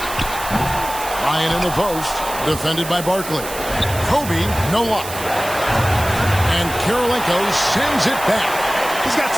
Ryan in the post, defended by Barkley. Kobe, no luck. And Karolinko sends it back. He's got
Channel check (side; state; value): right; noise; hiss, 10 dB below the sound